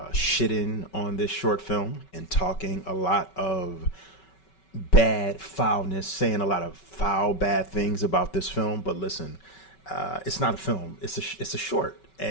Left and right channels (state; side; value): late; right; 5.3 ms